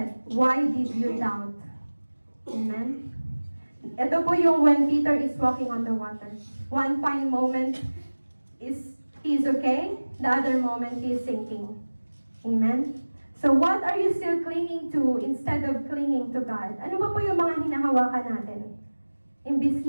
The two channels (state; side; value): inverted; both; correlation -1.00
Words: Why did you doubt? Amen? Ito po yung when Peter is walking on the water. One fine moment he's okay, the other moment he's sinking. Amen? So what are you still clinging to instead of clinging to God? Ano ba po yung mga hinahawakan natin? Imbis